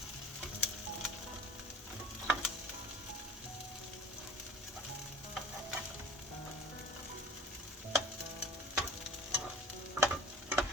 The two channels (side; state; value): both; normal; correlation 0.42